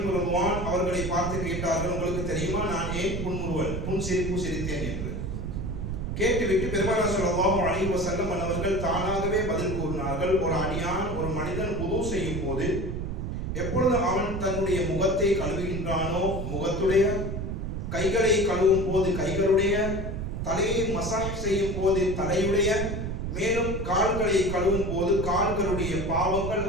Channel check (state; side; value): noise; right; rumble, 4 dB below the sound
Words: ரிதுவான் அவர்களை பார்த்து கேட்டார்கள், உங்களுக்கு தெரியுமா நான் ஏன் புன்சிரிப்பு சிரித்தேன் என்று? கேட்டுவிட்டு பெருமானார் ஸல்லல்லாஹு அலைஹி வஸல்லம் அன்னவர்கள் தானாகவே பதில் கூறினார்கள், ஒரு அடியான் ஒரு மனிதன் வுது செய்யும் போது எப்பொழுது அவன் தன்னுடைய முகத்தை கழுவுகின்றானோ முகத்துடைய, கைகளை கழுவும் போது கைகளுடைய, தலையை மசாஜ் செய்யும் போது தலையுடைய, மேலும் கால்களை கழுவும் போது கால்களுடைய பாவங்கள்